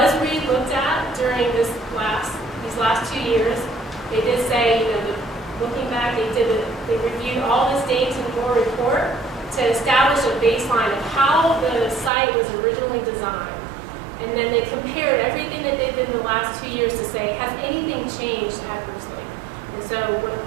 re-looked at during these last 2 years. They did say, looking back, they reviewed all this data in your report to establish a baseline of how the site was originally designed. And then they compared everything that they did in the last 2 years to say, has anything changed adversely? And so when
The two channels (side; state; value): left; drops out; at 12.1 s